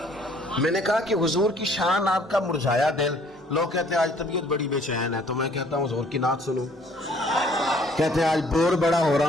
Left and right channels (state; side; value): normal; both; correlation 0.59